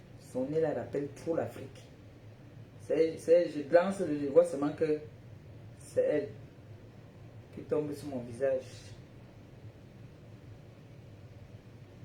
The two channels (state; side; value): identical; both; correlation 1.00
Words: Son nez là rappelle trop l'Afrique. Je glance, je vois seulement que c'est elle qui tombe sur mon visage.